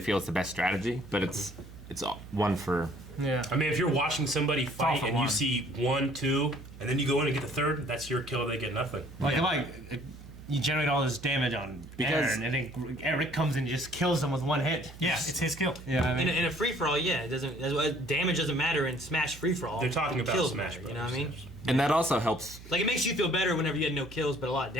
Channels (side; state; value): right; noise; hum, 17 dB below the sound